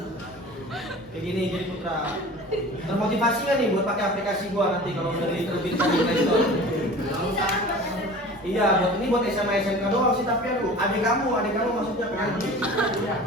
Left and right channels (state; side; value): noise; right; hum, 27 dB below the sound